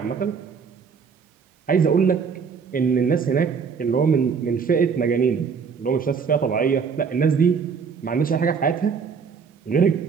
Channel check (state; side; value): quieter; left; 6.0 dB